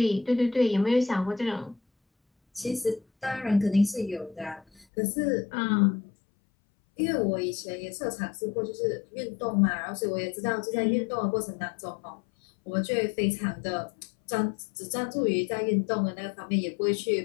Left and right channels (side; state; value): right; drops out; at 4.9 s